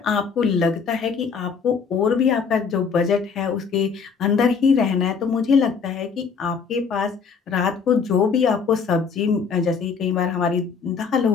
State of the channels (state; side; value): quieter; right; 5.7 dB